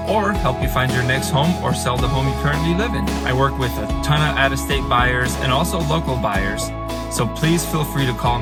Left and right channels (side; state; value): both; identical; correlation 1.00